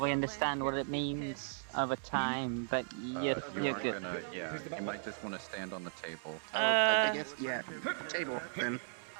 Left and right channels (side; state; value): left; silent; digital silence